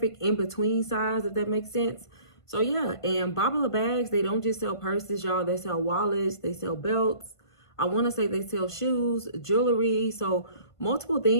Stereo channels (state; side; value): late; right; 1.5 ms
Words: in-between size, if that makes sense. So yeah, and Babala bags, they don't just sell purses, y'all. They sell wallets, they sell belts. I want to say they sell shoes, jewelry, so multiple